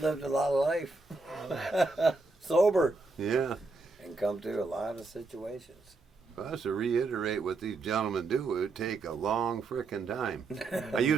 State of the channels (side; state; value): left; quieter; 3.7 dB